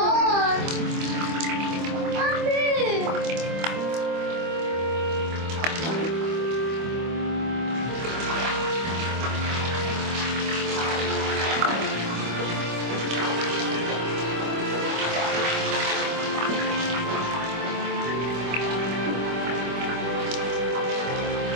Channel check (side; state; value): left; late; 25 ms